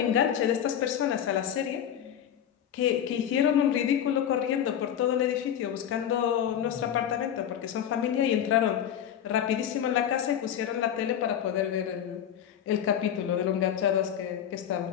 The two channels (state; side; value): quieter; right; 9.7 dB